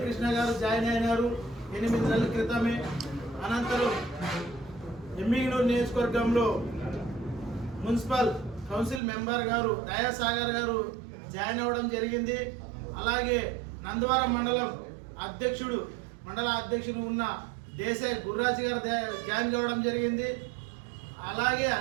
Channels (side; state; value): left; drops out; at 9.0 s